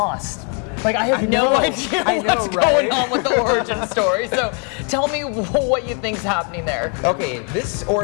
Like, I have no idea what's going on with the origin story. So, tell me what you think's happening there. Okay, this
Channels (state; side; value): quieter; right; 38.7 dB